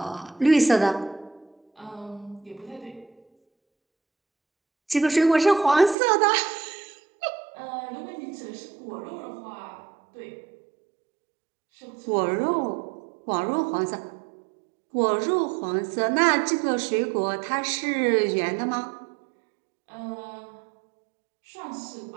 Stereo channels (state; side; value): drops out; left; at 6.0 s